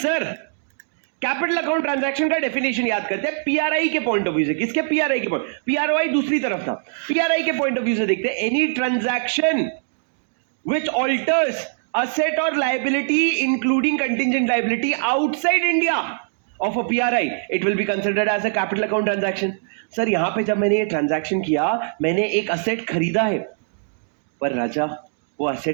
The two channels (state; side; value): silent; left; digital silence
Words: capital account transaction का डेफिनेशन याद करते हैं पीआरआई के पॉइंट ऑफ व्यू से। किसके? पीआरआई के पॉइंट। पीआरओआई दूसरी तरफ था, पीआरआई के पॉइंट ऑफ व्यू से देखते हैं। Any transaction which alters asset और liability including contingent liability outside India of a PRI, it will be considered as a capital account transaction. Sir यहां पे जब मैंने ये ट्रांजैक्शन किया, मैंने एक असेट खरीदा है, पर राजा वो